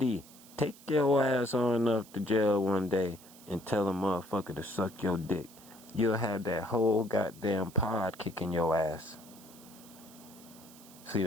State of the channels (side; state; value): right; noise; hiss, 21 dB below the sound